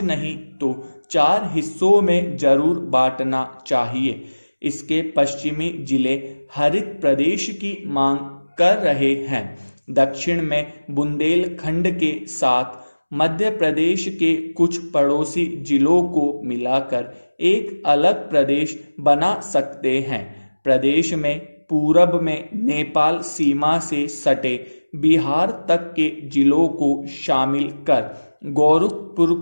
नहीं तो 4 हिस्सों में जरूर बांटना चाहिए। इसके पश्चिमी जिले हरित प्रदेश की मांग कर रहे हैं। दक्षिण में बुंदेलखंड के साथ मध्य प्रदेश के कुछ पड़ोसी जिलों को मिलाकर एक अलग प्रदेश बना सकते हैं। प्रदेश में पूरब में नेपाल सीमा से सटे बिहार तक के जिलों को शामिल कर गोरखपुर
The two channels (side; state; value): both; inverted; correlation -1.00